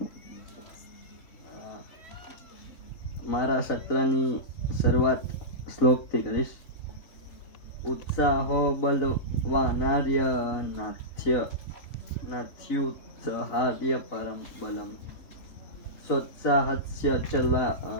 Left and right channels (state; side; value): late; right; 3.5 ms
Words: મારા સત્રની શરૂઆત શ્લોકથી કરીશ. ઉત્સાહો બલવાનાર્ય નાથ્યુત્સાહાર્ય પરમ બલમ સોત્સાહસ્ય